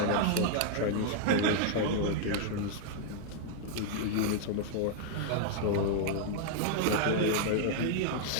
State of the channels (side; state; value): both; different; correlation -0.01